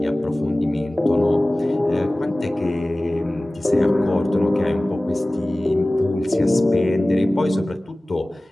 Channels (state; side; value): normal; both; correlation 0.98